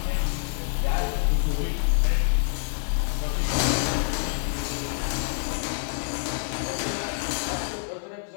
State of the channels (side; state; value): right; silent; 60 dB below the other